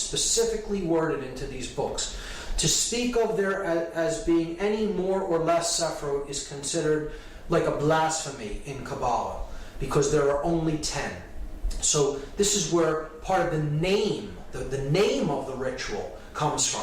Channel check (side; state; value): both; identical; correlation 1.00